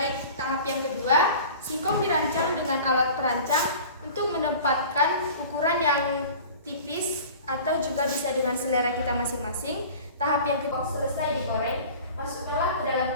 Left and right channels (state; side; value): inverted; both; correlation -0.41